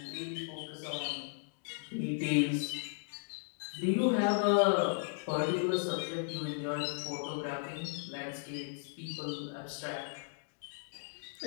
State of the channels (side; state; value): right; silent; digital silence